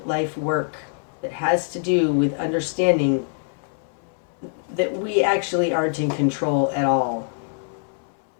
life work that has to do with understanding that we actually aren't in control at all.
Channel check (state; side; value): silent; right; digital silence